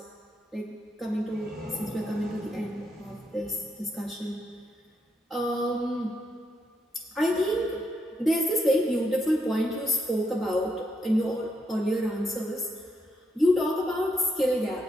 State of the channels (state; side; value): normal; both; correlation 0.79